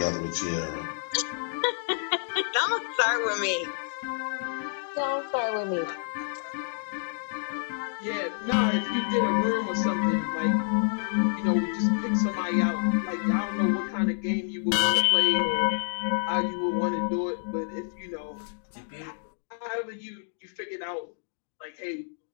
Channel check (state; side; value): silent; right; digital silence